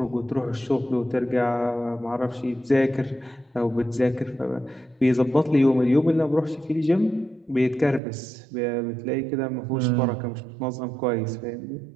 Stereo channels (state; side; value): drops out; left; at 8.0 s